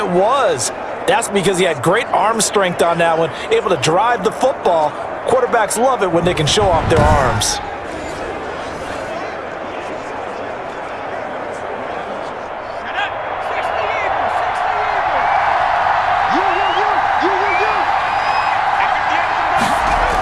was. That's because he had great arm strength on that one, able to drive the football. Quarterbacks love it when they can show off their arms.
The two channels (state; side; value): identical; both; correlation 1.00